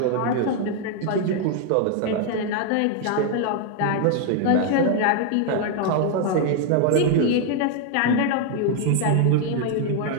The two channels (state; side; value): different; both; correlation 0.00